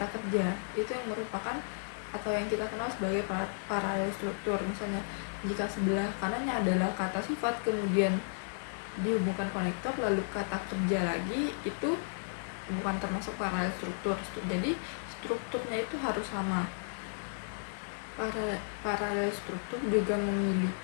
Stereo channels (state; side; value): silent; right; digital silence